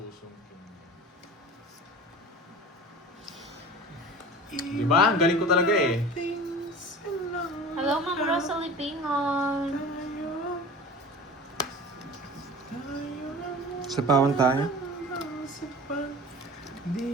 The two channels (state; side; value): normal; both; correlation 0.37